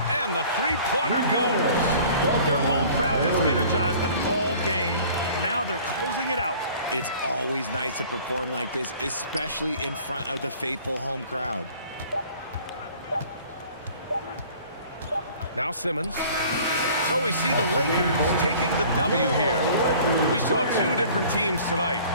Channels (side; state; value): both; inverted; correlation -0.49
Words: the 3-pointer goes. Their home crowd has energized them all game. Now they're closing it out. It's always nice to perform like this, especially in front of the faithful home crowd. Now Simmons. So we see the Lakers taking the W here. We saw 2 different teams tonight.